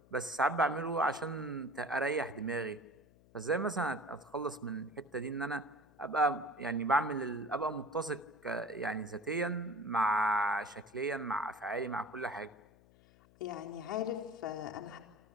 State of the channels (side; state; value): left; noise; hum, 27 dB below the sound